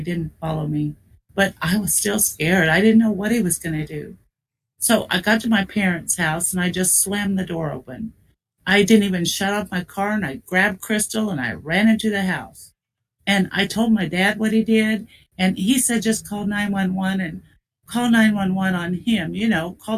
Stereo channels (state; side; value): identical; both; correlation 1.00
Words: didn't follow me. But I was still scared. I didn't know what he was going to do. So I got to my parents' house and I just slammed the door open. I didn't even shut off my car, and I grabbed Crystal and I ran into the house. And I told my dad what he did, and he said just call 911 and call 911 on him,